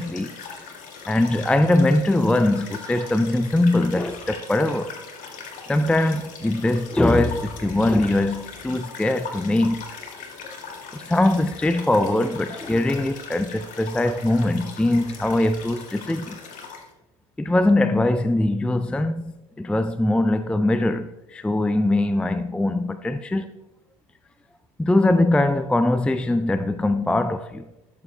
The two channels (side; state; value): both; normal; correlation 0.92